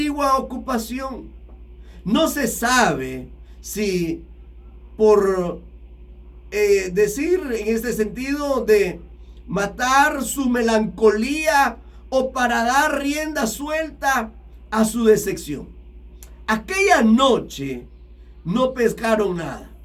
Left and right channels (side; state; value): both; identical; correlation 1.00